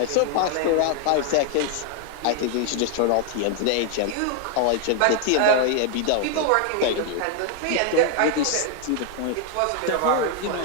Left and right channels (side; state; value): both; different; correlation 0.00